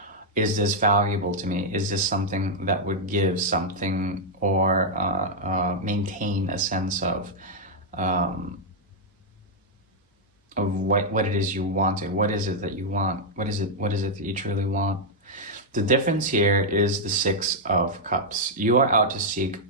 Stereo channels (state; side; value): normal; both; correlation -0.04